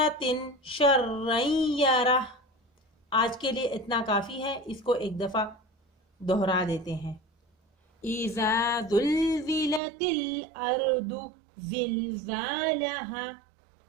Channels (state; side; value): drops out; left; at 9.8 s